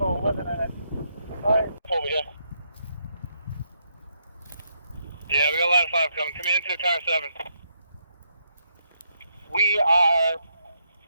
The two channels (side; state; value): both; inverted; correlation -0.77